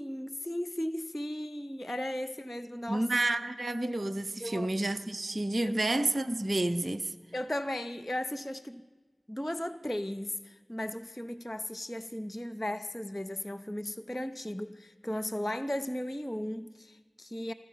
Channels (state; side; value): normal; both; correlation 0.97